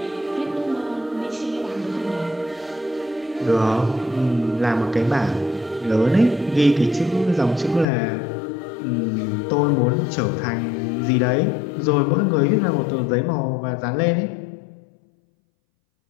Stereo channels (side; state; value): right; drops out; at 7.9 s